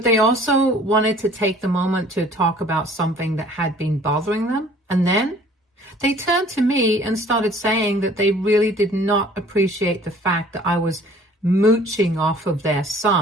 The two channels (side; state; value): both; normal; correlation 0.53